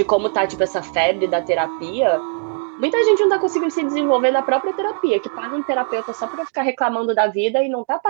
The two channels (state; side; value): silent; left; 56 dB below the other